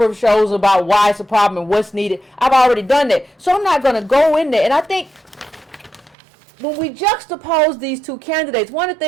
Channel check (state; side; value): drops out; left; at 6.2 s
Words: of shows about why it's a problem and what's needed. I've already done that. So I'm not going to go in there. And I think when we juxtapose these two candidates, one of the